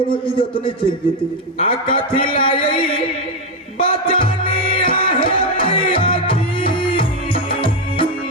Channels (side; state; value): both; normal; correlation 0.07